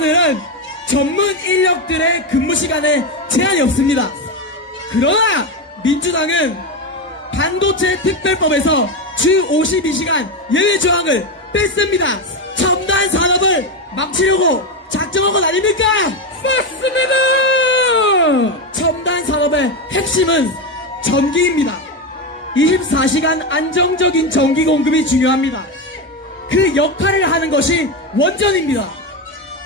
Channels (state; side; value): normal; both; correlation 0.13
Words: 전문 인력들의 근무 시간에 제한이 없습니다. 그러나 민주당은 반도체 특별법에서 주 52시간 예외 조항을 뺐습니다. 첨단 산업을 망치려고 작정한 것 아닙니까? 맞습니다. 첨단 산업의 핵심은 전기입니다. 24시간 안정적인 전기 공급이 중요합니다. 그 역할을 하는 것이 원전입니다.